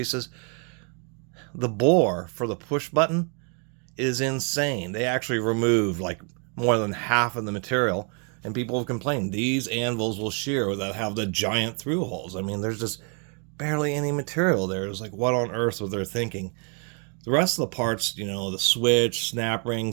the bore for the push button is insane. They actually removed like more than half of the material, and people have complained these anvils will shear that have the giant through holes. I mean, there's just barely any material there. It's like, what on earth were they thinking? The rest of the parts, you know, the switch, snap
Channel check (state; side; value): quieter; left; 38.4 dB